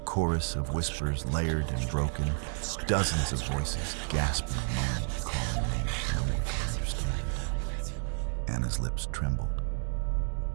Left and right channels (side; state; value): left; silent; 57 dB below the other